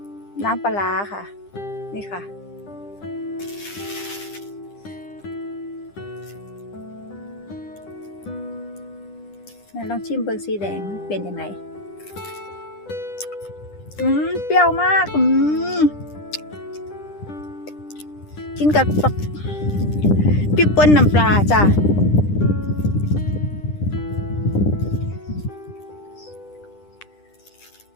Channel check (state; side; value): late; right; 10 ms